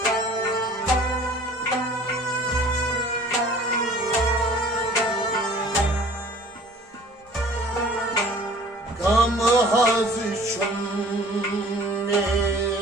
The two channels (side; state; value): both; normal; correlation 0.49